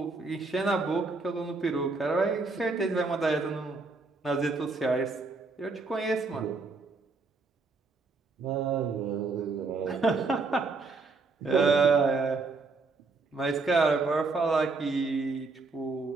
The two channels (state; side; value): quieter; left; 3.9 dB